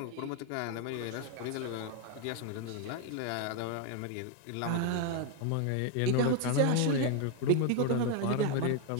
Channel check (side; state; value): both; different; correlation 0.01